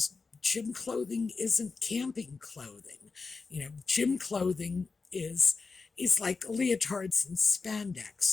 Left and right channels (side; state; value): right; quieter; 4.4 dB